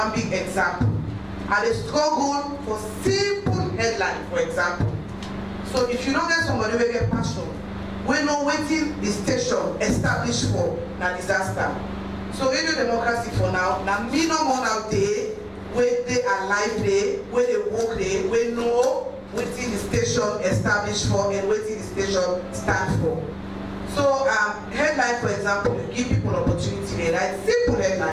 big example. And they struggle for simple headline, for example. So if you don't get somebody who get passion, we know waiting the station established for a disaster. So radio democracy for now, me no more out there, where they are live there, where they work there, we know waiting the station established for and waiting the station stand for. So headline, for example, you give people opportunity there, right? Simple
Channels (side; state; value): both; identical; correlation 1.00